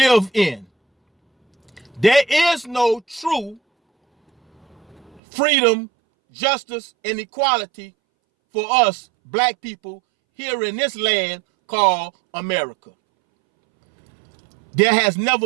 in, there is no true freedom, justice, and equality for us black people here in this land called America. There has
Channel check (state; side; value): drops out; left; at 5.2 s